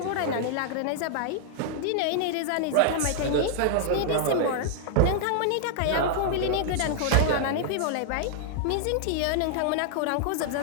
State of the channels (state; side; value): different; both; correlation -0.01